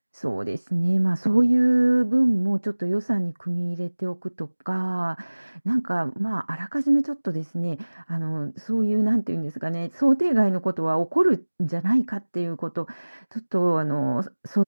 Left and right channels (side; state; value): both; inverted; correlation -1.00